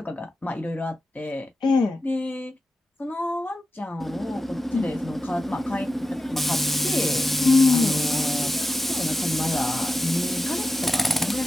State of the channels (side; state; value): both; normal; correlation 0.90